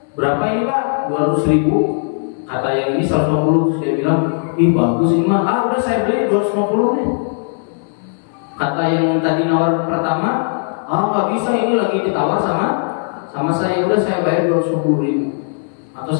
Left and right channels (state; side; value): silent; right; 67 dB below the other